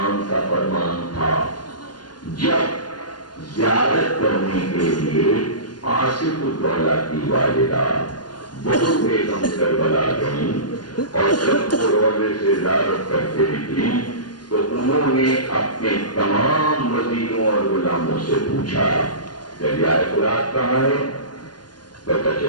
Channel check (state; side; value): late; right; 0.70 ms